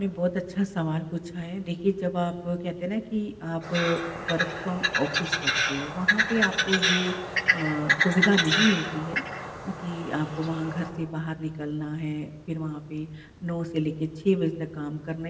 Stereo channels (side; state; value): both; identical; correlation 1.00